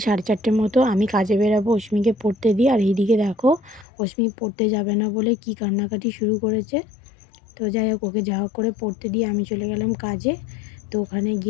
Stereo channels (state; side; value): drops out; right; at 3.9 s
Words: 4:30 মতো, আমি কাজে বেরাবো অশ্মিকে পড়তে দিই। আর এইদিকে দেখো অশ্মি পড়তে যাবে না বলে কি কান্নাকাটি শুরু করেছে। তো যাই হোক, ওকে যা হোক করে পড়তে দিয়ে আমি চলে গেলাম কাজে। তো ওখানে